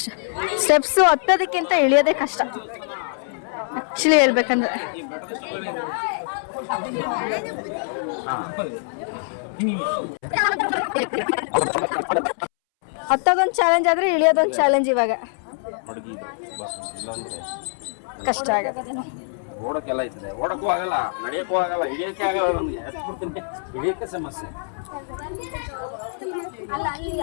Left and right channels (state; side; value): silent; right; 63 dB below the other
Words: ಸ್ಟೆಪ್ಸ್ ಹತ್ತೋದಕ್ಕಿಂತ ಇಳಿಯೋದೇ ಕಷ್ಟ ಆಕ್ಚುಲಿ ಹೇಳ್ಬೇಕಂದ್ರೆ. ಹತ್ತೋದೊಂದು ಚಾಲೆಂಜ್ ಆದ್ರೆ ಇಳಿಯೋದೊಂದು ಚಾಲೆಂಜ್. ಇವಾಗ ಕಷ್ಟ ಆಗತ್ತೆ. ಓಡಕ್ಕೆಲ್ಲ ಐತದೆ, ಓಡಕ್ಕೂ ಆಗಲ್ಲ, ನಡೆಯಕ್ಕೂ ಆಗಲ್ಲ, ಹಿಡಿಯಕ್ಕೆ ಆಗಲ್ಲ. ನಮ್ಗೆ ಹತ್ಬಿಡ್ತೀನಿ, ಹಿಡಿಯಕ್ಕೆ ಸಮಸ್ಯೆ.